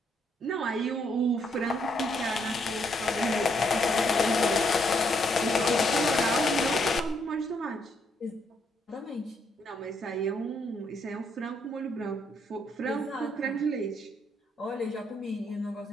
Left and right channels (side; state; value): both; normal; correlation 0.73